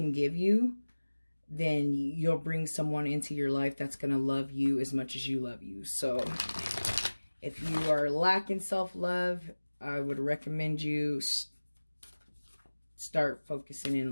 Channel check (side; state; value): both; inverted; correlation -1.00